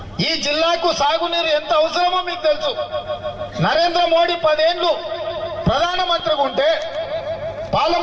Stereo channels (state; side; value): identical; both; correlation 1.00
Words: ఈ జిల్లాకు సాగునీరు ఎంత అవసరమో మీకు తెలుసు. నరేంద్ర మోడీ 10 ఏళ్ళు ప్రధానమంత్రిగా ఉంటే